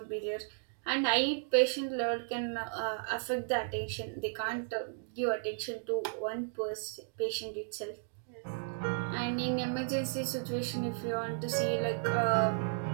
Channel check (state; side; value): silent; left; digital silence